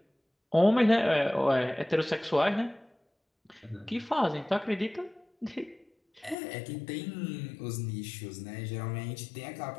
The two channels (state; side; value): drops out; right; at 6.4 s